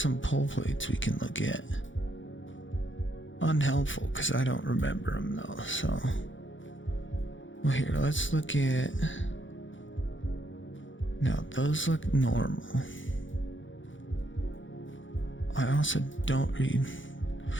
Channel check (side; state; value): right; late; 0.56 ms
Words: pole plates we can look at. Unhelpful, because I don't remember them though, so. Well, here, let's look at... Now, those look normal. I also don't read...